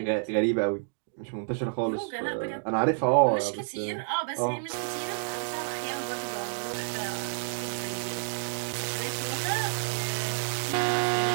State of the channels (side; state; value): left; silent; digital silence